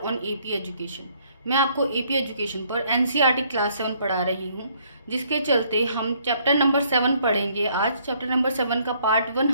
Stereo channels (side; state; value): both; inverted; correlation -0.65